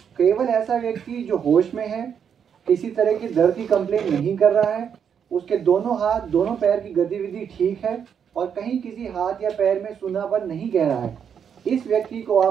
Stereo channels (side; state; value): left; quieter; 7.7 dB